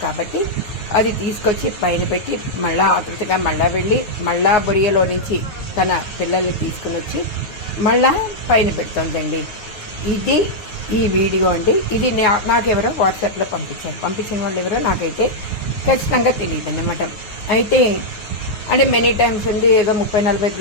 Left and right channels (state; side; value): late; right; 9.5 ms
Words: కాబట్టి అది తీసుకొచ్చి పైన పెట్టి మళ్ళా ఆతృతగా మళ్ళా వెళ్ళి మళ్ళా బొరియోలో నుంచి తన పిల్లల్ని తీసుకుని వచ్చి మళ్ళా పైన పెడుతుందండి. ఇది ఈ వీడియో అండి. ఇది నాకెవరో వాట్సాప్లో పంపించిన వాళ్ళు ఎవరో నాకైతే ఖచ్చితంగా తెలియదు అన్నమాట. అయితే అంటే మెనీ టైమ్స్ ఉంది, ఏదో 30-40